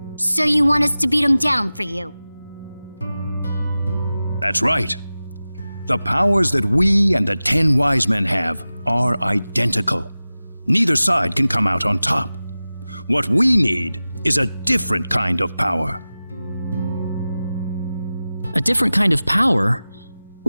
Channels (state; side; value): inverted; both; correlation -0.96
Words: So you want us to beat them down for you? That's right. The powers that we and the 10 wise men have are identical. Neither side can come out on top. What we need is a different kind of power. A different kind of power?